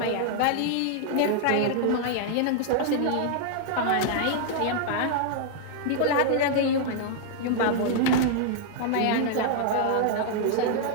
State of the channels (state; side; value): different; both; correlation -0.01